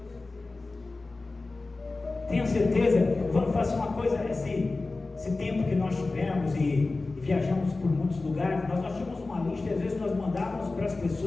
Tenha certeza, vamos fazer uma coisa, esse tempo que nós tivemos e viajamos por muitos lugares, nós tínhamos uma lista, e às vezes nós mandávamos para as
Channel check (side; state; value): right; quieter; 3.4 dB